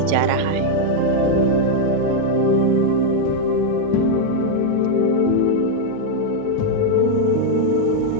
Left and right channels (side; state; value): both; different; correlation -0.01